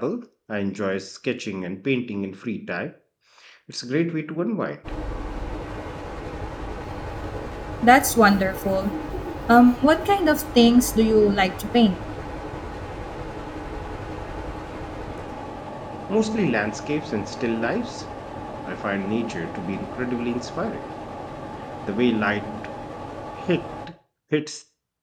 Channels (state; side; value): identical; both; correlation 1.00